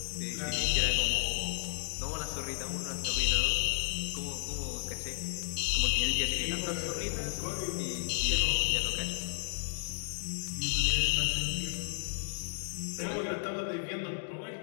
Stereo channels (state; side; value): silent; right; digital silence